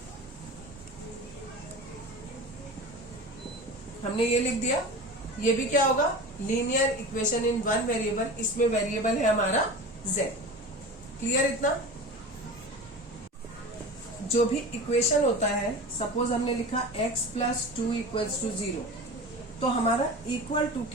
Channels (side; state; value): both; normal; correlation 0.33